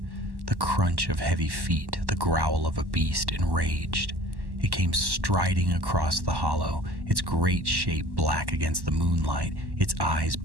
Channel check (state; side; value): late; left; 1.1 ms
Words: the crunch of heavy feet, the growl of a beast enraged. It came striding across the hollow, its great shape black against the moonlight, its eyes